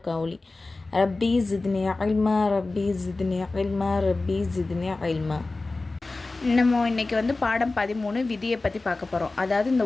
கௌலி. ரப்பி ஜித்னி இல்மா ரப்பி ஜித்னி இல்மா ரப்பி ஜித்னி இல்மா. நம்ம இன்றைக்கி பாடம் 13 விதியை பற்றி பார்க்க போகிறோம். அதாவது இந்த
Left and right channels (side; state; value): right; quieter; 3.4 dB